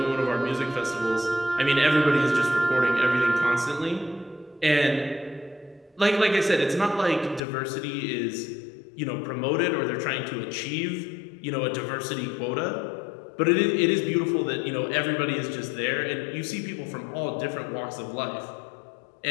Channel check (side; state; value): right; drops out; at 7.4 s